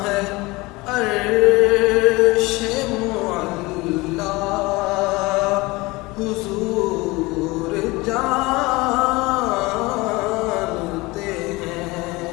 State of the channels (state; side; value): quieter; right; 22.7 dB